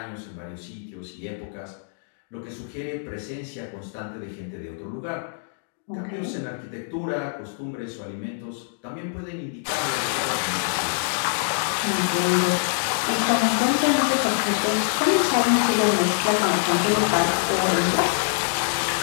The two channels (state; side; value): silent; right; digital silence